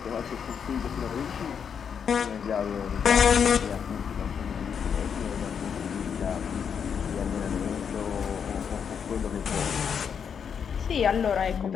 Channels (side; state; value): right; quieter; 7.2 dB